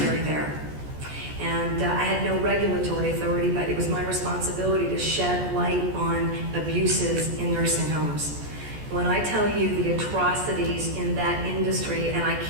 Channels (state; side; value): late; left; 14 ms